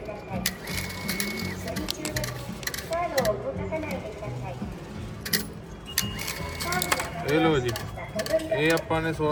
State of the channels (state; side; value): identical; both; correlation 1.00